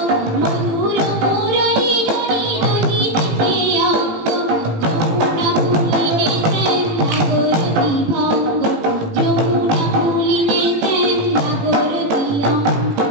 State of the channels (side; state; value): left; late; 18 ms